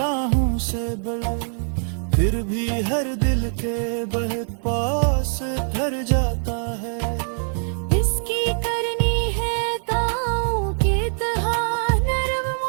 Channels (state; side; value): silent; left; digital silence